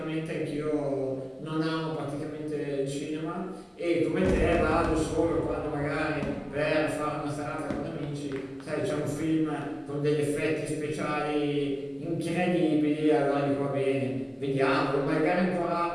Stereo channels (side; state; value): both; identical; correlation 1.00